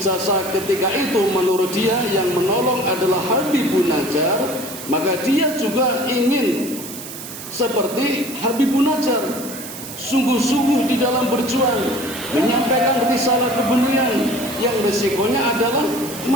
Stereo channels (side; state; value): right; noise; hiss, 11 dB below the sound